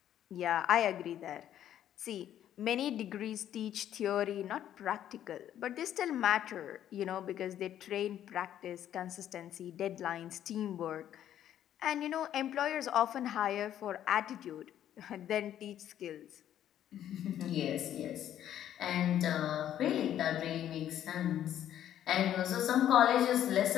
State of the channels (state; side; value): quieter; right; 11.0 dB